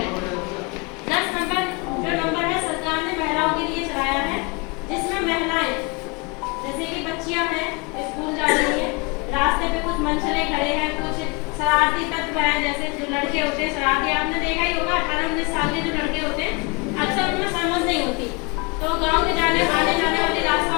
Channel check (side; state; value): right; quieter; 29.1 dB